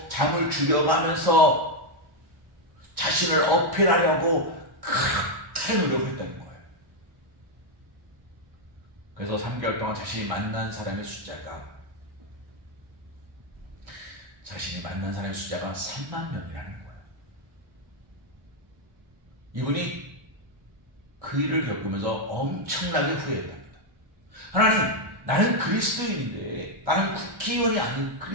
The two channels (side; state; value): left; late; 1.6 ms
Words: 잠을 줄여가면서 자신을 어필하려고 그렇게 노력했다는 거예요. 그래서 3개월 동안 자신이 만난 사람의 숫자가 3만 명이라는 거예요. 이분이 그 일을 겪으면서 엄청나게 후회했답니다. 하나님, 나는 그리스도인인데, 나는 국회의원이 아닌